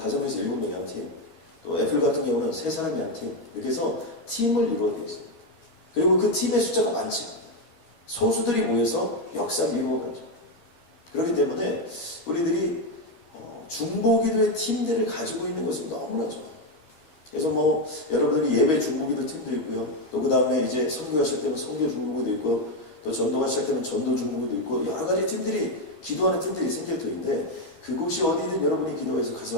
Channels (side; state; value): right; late; 13 ms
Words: 7명의 한 팀, 또 애플 같은 경우는 3사람이 한 팀, 이렇게 해서 팀을 이루어져 있습니다. 그리고 그 팀의 숫자가 많지 않아요. 소수들이 모여서 역사를 이루어가죠. 그렇기 때문에 우리들이 중보기도의 팀들을 가지고 있는 것은 너무나 좋아요. 그래서 여러분들이 예배 중보기도 팀도 있고요. 또 그 다음에 이제 선교가 시작되면 선교 중보기도 있고요. 또 전도가 시작되면 전도 중보기도 있고 여러 가지 팀들이, 기도하는 팀들이 생길 터인데 그곳이 어디든 여러분이 기도해서